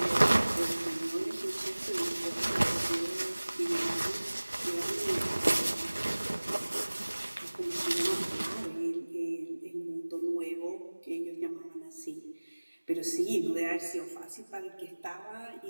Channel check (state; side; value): inverted; both; correlation -1.00